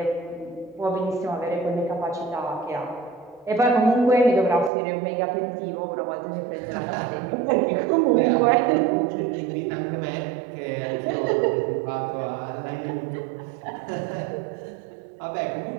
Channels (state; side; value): drops out; left; at 4.7 s